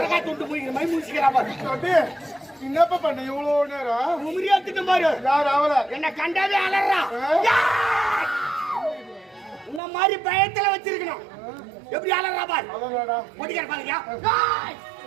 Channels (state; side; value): drops out; left; at 9.8 s